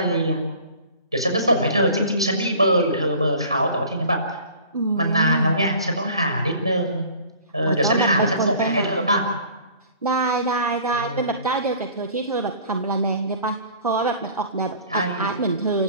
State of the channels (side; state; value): both; inverted; correlation -0.47